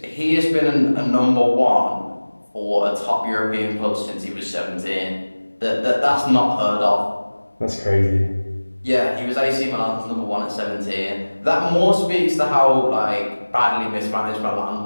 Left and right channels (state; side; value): inverted; both; correlation -1.00